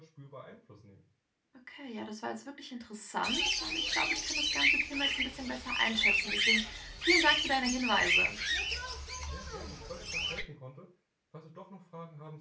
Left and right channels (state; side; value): identical; both; correlation 1.00